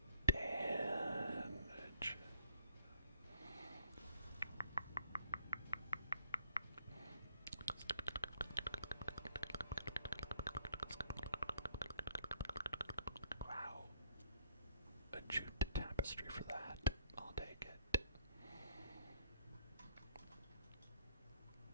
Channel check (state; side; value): inverted; both; correlation -0.65